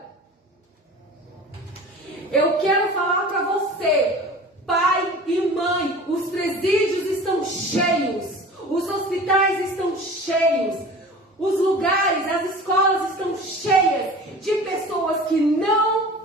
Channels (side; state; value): both; normal; correlation 0.39